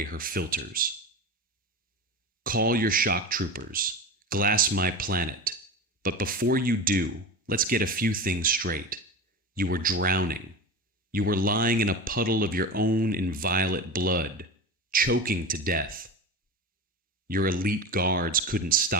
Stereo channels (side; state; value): both; normal; correlation 0.27